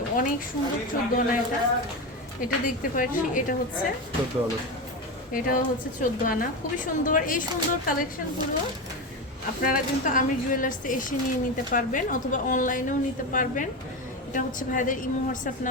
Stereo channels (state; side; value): normal; both; correlation 0.19